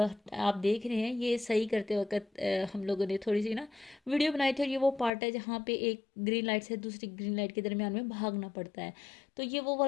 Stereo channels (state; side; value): drops out; right; at 5.1 s